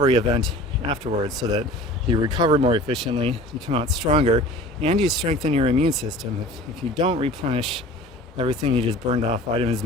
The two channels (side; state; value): both; normal; correlation 0.42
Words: event afterwards, so that you recover more efficiently, you come out stronger, and you strengthen your immune system. If you don't replenish everything you just burned off, vitamins,